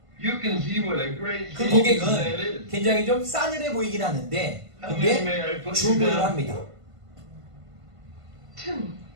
그 고객은 굉장히 좀 싸늘해 보이긴 하는데 근데 주문을 합니다.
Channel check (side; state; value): left; late; 1.5 ms